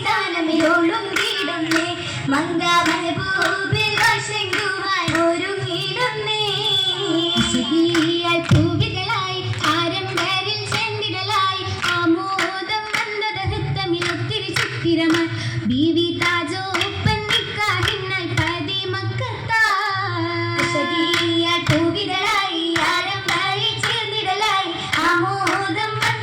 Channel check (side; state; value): both; identical; correlation 1.00